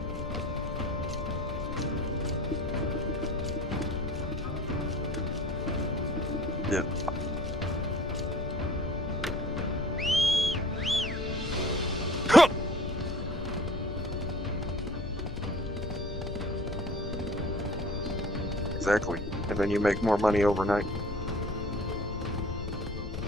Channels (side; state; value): left; noise; rumble, 8 dB below the sound